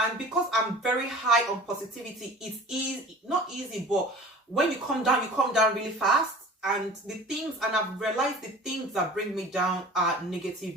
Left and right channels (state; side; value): normal; both; correlation 0.42